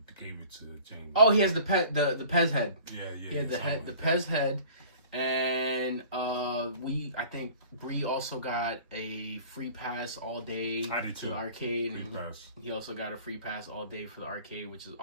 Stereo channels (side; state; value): both; inverted; correlation -0.47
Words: gave it to Jamie. Oh, he has the Pez head. Yeah. He had the Pez head. And I think Bree also got a free pass all day to the arcade. And he also got a free pass all day for the arcade, which is